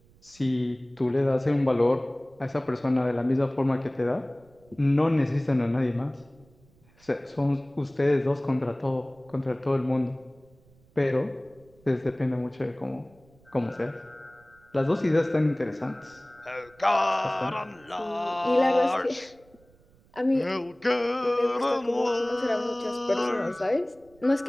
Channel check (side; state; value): right; noise; rumble, 29 dB below the sound